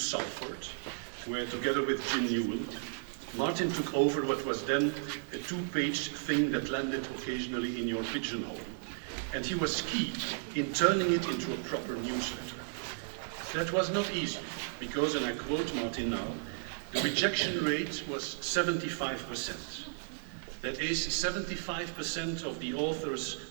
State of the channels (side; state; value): left; silent; digital silence